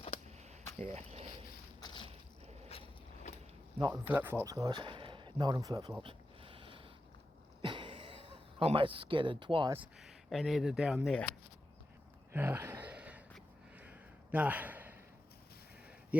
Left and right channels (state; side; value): normal; both; correlation 0.90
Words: Yeah. Not in flip-flops, guys. Not in flip-flops. Almost skidded twice and ended down there. Nah.